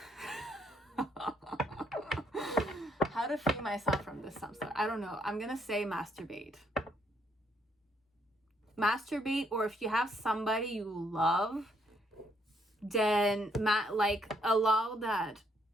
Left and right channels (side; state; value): both; normal; correlation 0.71